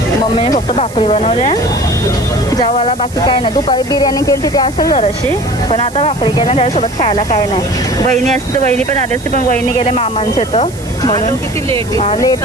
मम्मीने फक्त भाकरी बनवल्या जेवायला. बाकी काय नाही. दुपारी बिर्याणी केली तिथे असेल जराशी. पण आता भाकरी केल्या त्याच्यासोबत खायला काय नाही. वहिनी असते तर वहिनी पण आली असते. पण वहिनी गेले मामांचे तर म्हणून लेट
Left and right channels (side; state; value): right; noise; hiss, 19 dB below the sound